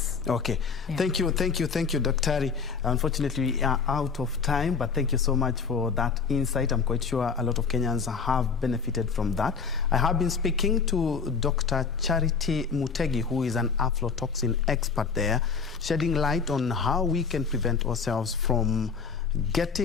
Okay, thank you, Dr. Unfortunately, we are out of time, but thank you so much for that insight. I'm quite sure a lot of Kenyans have benefited from that. I have been speaking to Dr. Charity Mutegi, who is an aflatoxin expert there, shedding light on how we can prevent ourselves from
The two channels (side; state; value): right; quieter; 5.6 dB